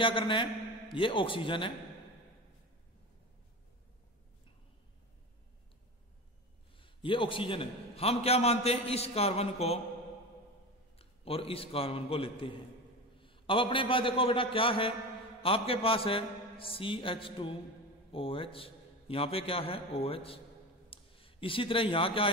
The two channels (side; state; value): both; normal; correlation 0.27